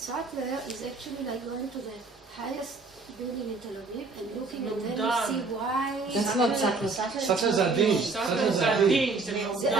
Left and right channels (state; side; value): quieter; left; 3.9 dB